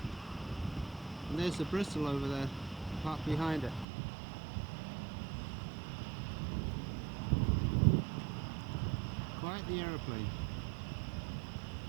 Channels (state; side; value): drops out; left; at 3.9 s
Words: And there's the Bristol over there, parked behind it. Quite the aeroplane.